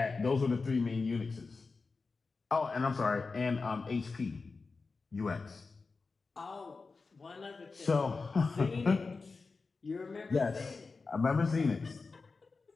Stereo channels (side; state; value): right; quieter; 4.2 dB